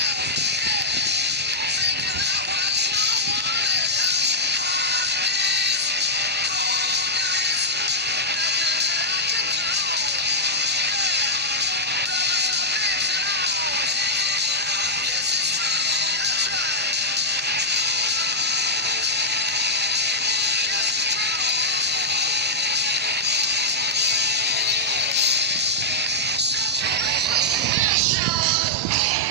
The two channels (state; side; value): normal; both; correlation -0.05